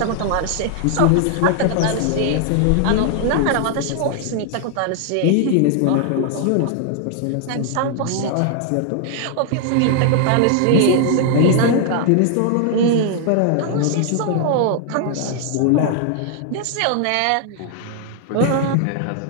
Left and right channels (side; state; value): both; different; correlation 0.00